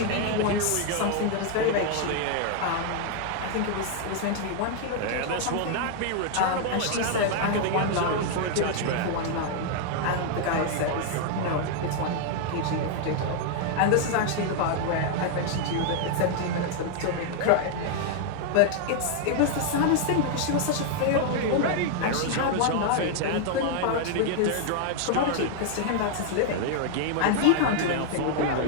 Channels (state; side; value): different; both; correlation 0.00